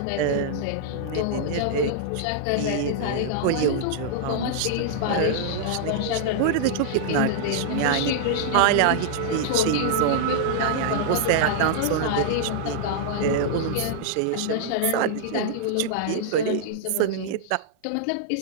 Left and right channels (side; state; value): both; different; correlation -0.01